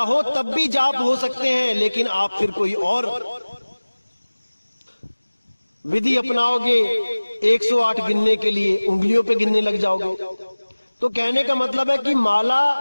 हो तब भी जाप हो सकते हैं, लेकिन आप फिर कोई और विधि अपनाओगे 108 गिनने के लिए, उंगलियों पे गिनने लग जाओगे। तो कहने का मतलब है कि माला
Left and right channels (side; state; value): both; inverted; correlation -1.00